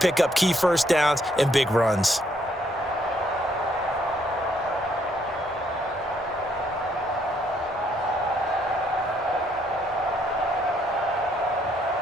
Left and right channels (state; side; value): normal; both; correlation 0.70